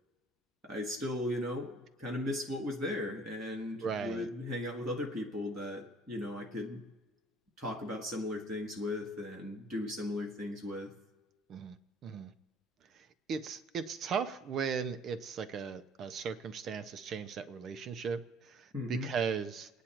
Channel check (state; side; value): normal; both; correlation 0.55